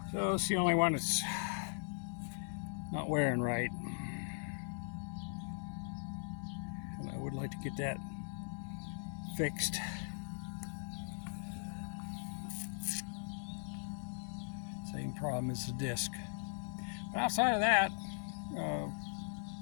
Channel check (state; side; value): silent; right; 51 dB below the other